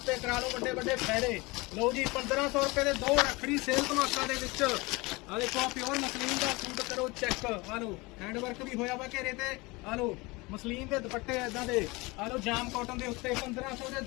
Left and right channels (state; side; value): quieter; right; 24.1 dB